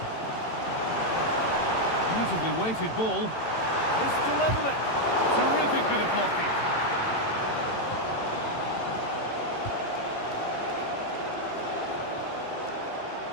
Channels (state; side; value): late; right; 18 ms